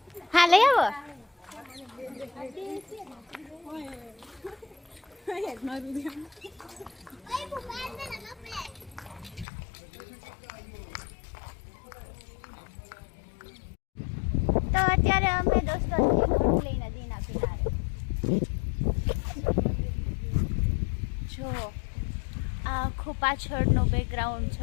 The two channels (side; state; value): right; drops out; at 9.5 s